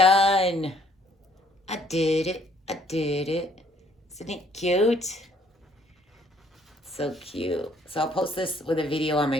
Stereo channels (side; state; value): both; normal; correlation 0.63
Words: I did it. I did it. Isn't it cute? So cute. So I'll post this with a video on my